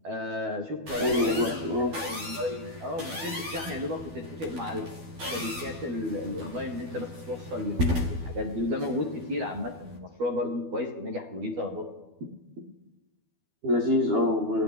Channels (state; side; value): late; left; 12 ms